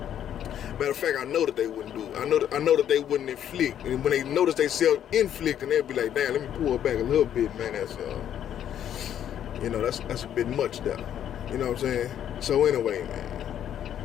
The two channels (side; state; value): right; quieter; 10.1 dB